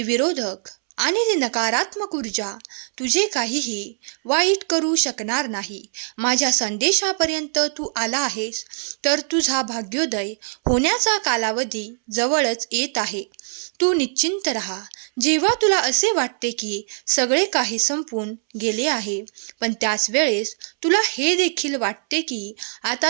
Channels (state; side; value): silent; left; 64 dB below the other